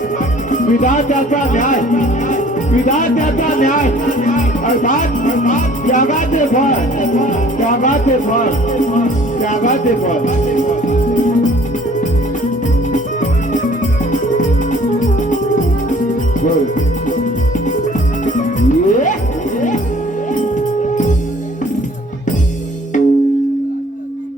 विधात्याचा न्याय विधात्याचा न्याय अर्थात त्यागाचे फळ त्यागाचे फळ त्यागाचे फळ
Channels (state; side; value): normal; both; correlation 0.54